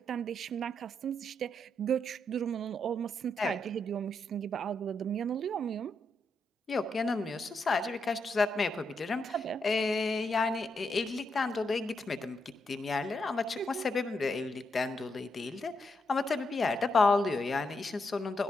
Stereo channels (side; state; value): both; normal; correlation 0.81